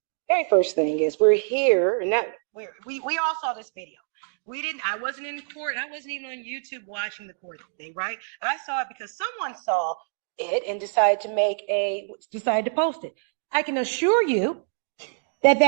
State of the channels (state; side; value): silent; left; digital silence